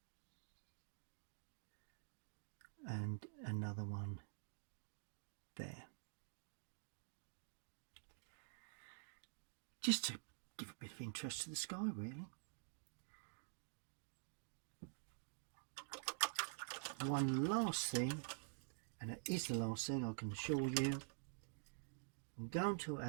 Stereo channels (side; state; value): left; silent; digital silence